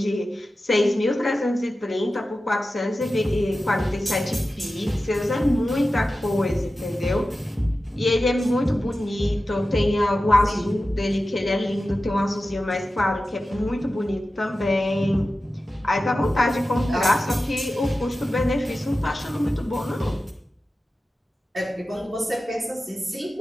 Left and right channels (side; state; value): both; normal; correlation 0.94